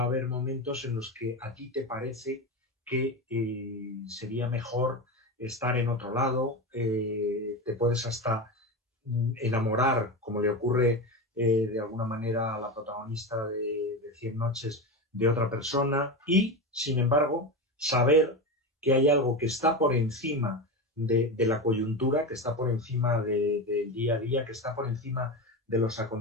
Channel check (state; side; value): normal; both; correlation 0.20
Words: a haber momentos en los que a ti te parece que sería mejor estar en otro lado, te puedes hasta enamorar, como le ocurre de alguna manera a la protagonista de 100 noches, de otra persona y, sin embargo, saber que hay algo que está por encima de la coyuntura, que está por encima del día a día, que está por encima de los